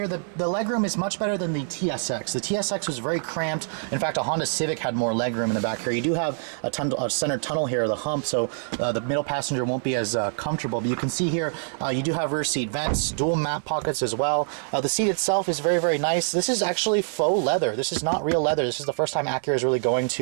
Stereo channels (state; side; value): silent; left; digital silence